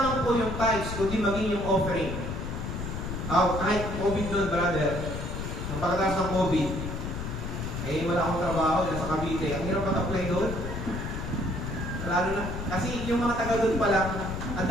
po yung tithes, kundi maging yung offering. Kahit COVID doon, brother, ang pagkatapos ng COVID, wala akong trabaho, nasa Cavite. Ang hirap mag-apply doon. Lalo na, kasi yung mga taga doon pa lang, ang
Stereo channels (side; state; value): left; noise; rumble, 5 dB below the sound